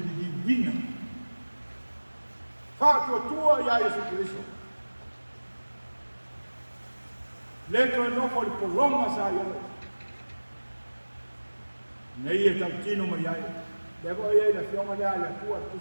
li wina. Whātua tua ia Yesu Kristo. Le koe nofo i polonga sa iau. Nei e tau tino mai ai. Le koe iei la fionga lea le kua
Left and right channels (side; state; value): both; inverted; correlation -1.00